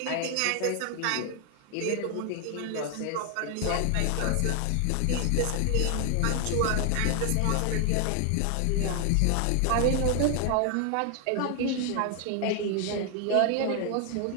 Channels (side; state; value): both; different; correlation 0.00